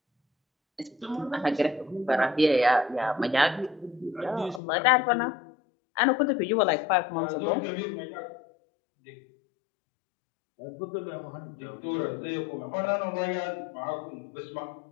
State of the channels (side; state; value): right; drops out; at 4.6 s